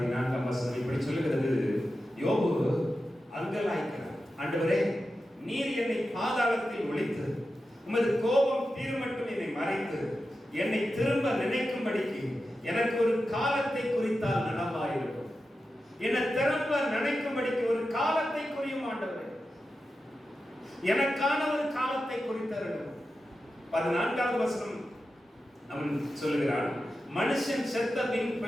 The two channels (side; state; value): both; normal; correlation 0.91